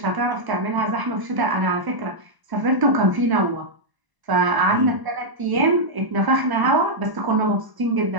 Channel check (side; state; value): left; late; 1.0 ms